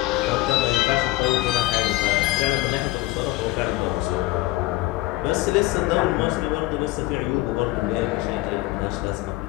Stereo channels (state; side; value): quieter; right; 19.1 dB